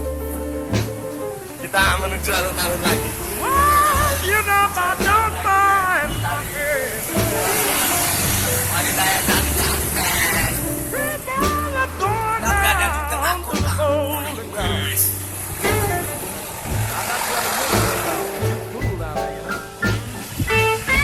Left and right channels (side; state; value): both; identical; correlation 1.00